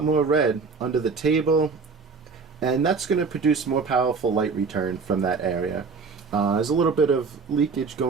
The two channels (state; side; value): quieter; left; 4.8 dB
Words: more red under the table, and that's going to produce more powerful light return from that area. There's a little bit of leakage